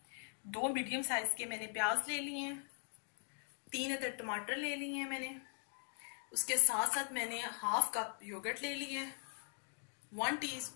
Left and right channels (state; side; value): silent; right; 51 dB below the other